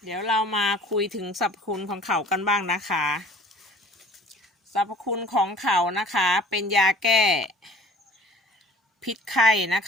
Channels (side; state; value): both; normal; correlation 0.50